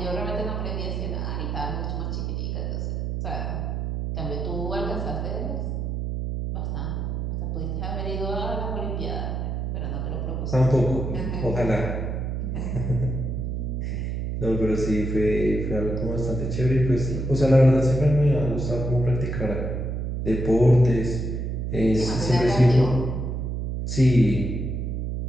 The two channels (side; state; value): right; noise; hum, 2 dB below the sound